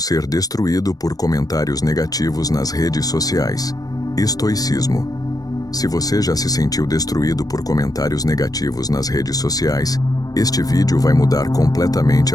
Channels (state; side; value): late; right; 0.18 ms